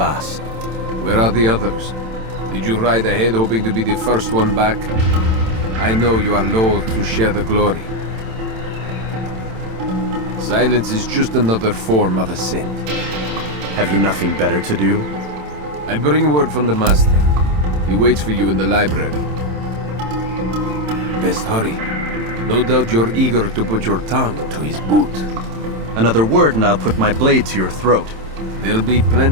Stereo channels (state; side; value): late; left; 27 ms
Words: Where are the others? Did you ride ahead hoping to be the first one back? I know you are loath to share the glory. Silence is just another form of a sin. Have you nothing better to do? I bring word from the Master. He waits for you in the library. Best hurry. No doubt you're eager to put your tongue to his boot. Another word and I'll put my blade to your throat. There'll be